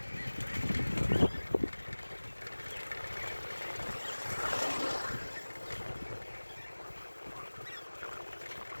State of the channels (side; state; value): both; inverted; correlation -1.00